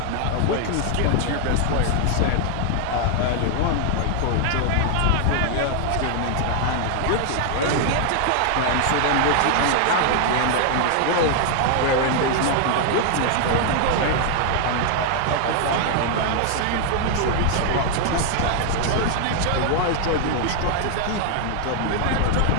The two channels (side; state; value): both; different; correlation 0.00